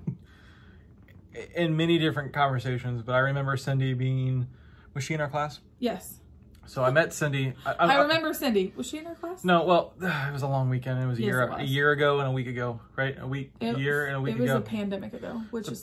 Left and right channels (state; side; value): identical; both; correlation 1.00